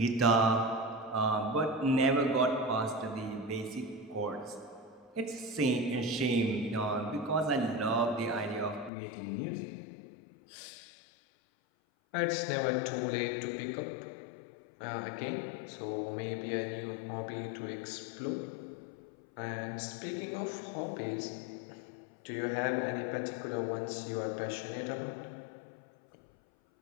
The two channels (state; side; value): drops out; right; at 8.9 s